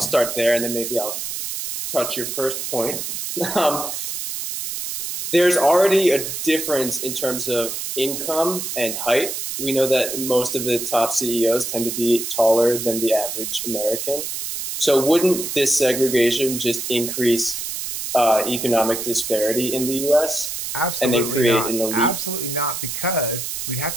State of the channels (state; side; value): noise; right; hiss, 4 dB below the sound